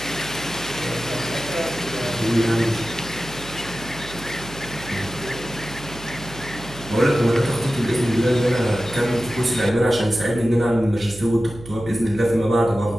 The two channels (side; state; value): right; noise; hum, 15 dB below the sound